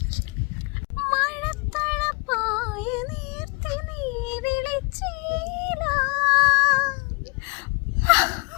മഴത്തഴപ്പായ നീർത്തി നീ വിളിച്ചീല.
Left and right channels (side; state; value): right; quieter; 32.3 dB